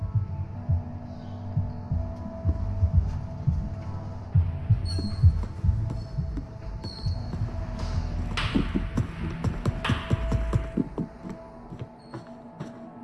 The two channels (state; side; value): identical; both; correlation 1.00